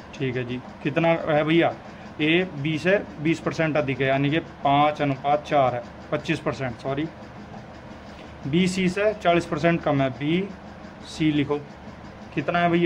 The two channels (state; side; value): identical; both; correlation 1.00